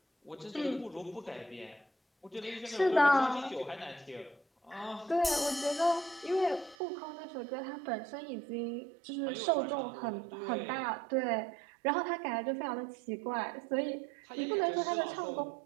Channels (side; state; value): left; drops out; at 6.8 s